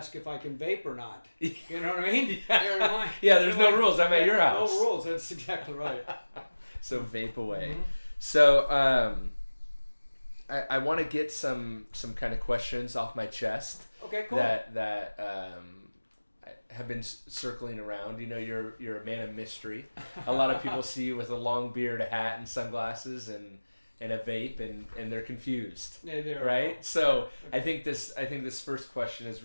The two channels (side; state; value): both; inverted; correlation -1.00